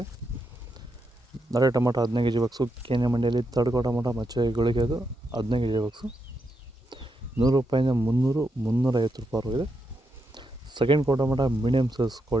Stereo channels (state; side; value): normal; both; correlation 0.83